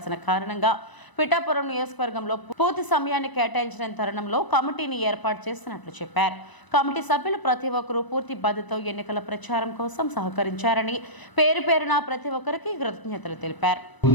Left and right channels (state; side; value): late; right; 1.0 ms